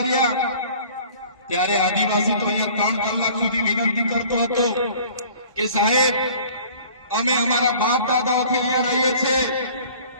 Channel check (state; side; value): inverted; both; correlation -0.49